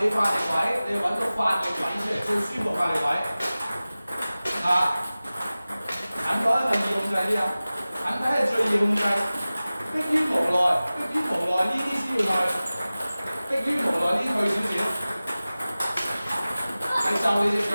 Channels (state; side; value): inverted; both; correlation -0.97